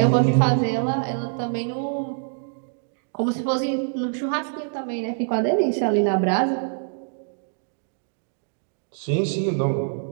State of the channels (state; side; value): silent; left; digital silence